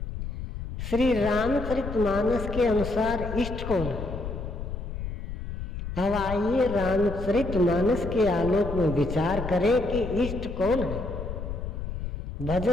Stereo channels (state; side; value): noise; left; rumble, 7 dB below the sound